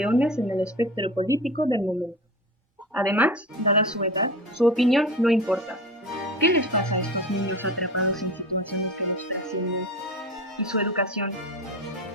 en el espectro político del momento. Además, dada su edad, su opinión no importa. ¿Qué les pasa a estos niños atrapados en situaciones que nos trascienden? ¿Y su educación?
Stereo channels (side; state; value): both; normal; correlation 0.31